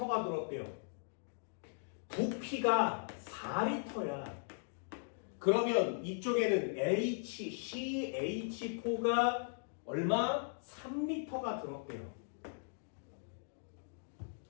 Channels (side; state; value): right; silent; digital silence